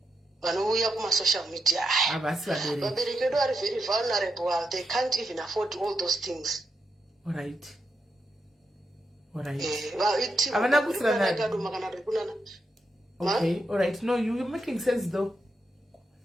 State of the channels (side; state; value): both; normal; correlation 0.84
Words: vanouya kumasocial media. Vabereki vedu are very vulnerable, they can't even afford all those things. All right. Alright. Havana kusirana. Okay, alright. No, you're making sense though.